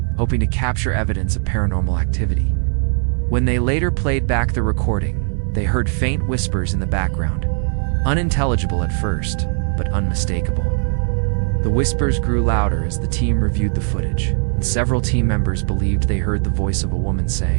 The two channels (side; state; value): left; silent; 55 dB below the other